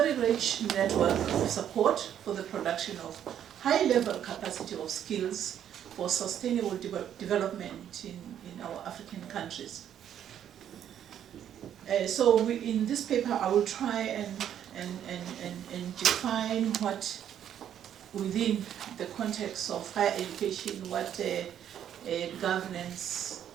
rich network of support for the production of high-level capacity of skills for sustainable development in our African countries. So in this paper, I will try and define what, within the context of higher education, what governance,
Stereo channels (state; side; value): quieter; left; 9.9 dB